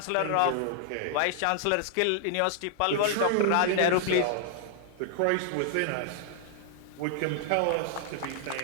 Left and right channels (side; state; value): both; different; correlation 0.00